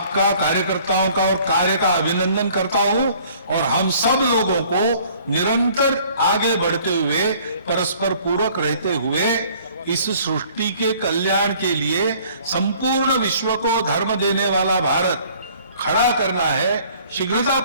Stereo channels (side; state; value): both; inverted; correlation -0.56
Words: कार्यकर्ताओं का और कार्य का अभिनंदन करता हूं, और हम सब लोगों को निरंतर आगे बढ़ते हुए, परस्पर पूरक रहते हुए इस सृष्टि के कल्याण के लिए संपूर्ण विश्व को धर्म देने वाला भारत खड़ा करना है,